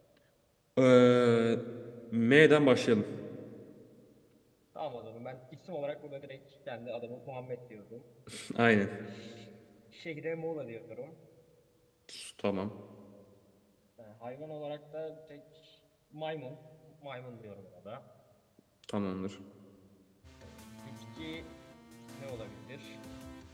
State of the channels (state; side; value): identical; both; correlation 1.00